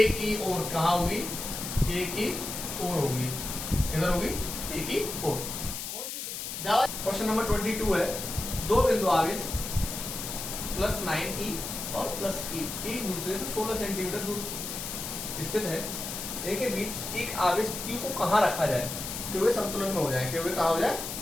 की ओर, कहाँ होगी ए की ओर होगी, किधर होगी ए की ओर। क्वेश्चन नंबर 22 है, दो बिंदु आवेश +9e और +e एक दूसरे से 16 सेंटीमीटर दूर स्थित है, इनके बीच एक आवेश q को कहाँ रखा जाए कि वे संतुलन में हो जाए, कि वे कहाँ हो जाए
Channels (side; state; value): left; noise; hiss, 6 dB below the sound